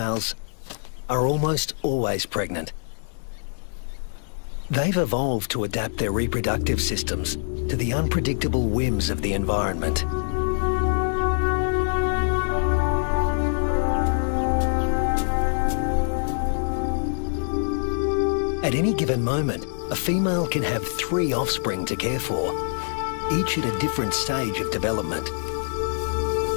are almost always pregnant. They've evolved to adapt their reproductive systems to the unpredictable whims of the environment. At any given moment, a female can have 3 offspring to care for, each at a different stage of development.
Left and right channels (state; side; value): silent; right; digital silence